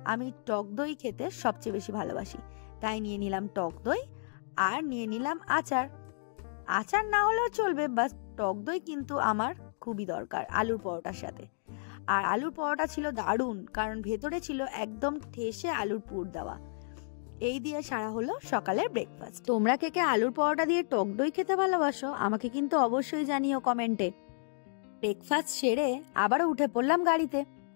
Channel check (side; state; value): right; silent; digital silence